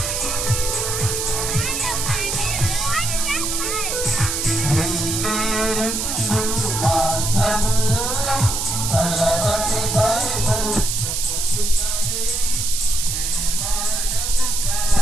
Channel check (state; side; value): noise; right; hiss, 1 dB below the sound